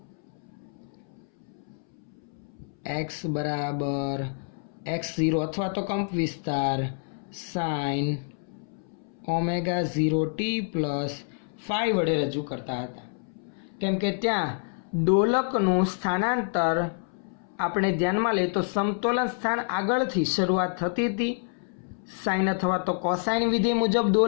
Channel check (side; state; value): right; silent; 60 dB below the other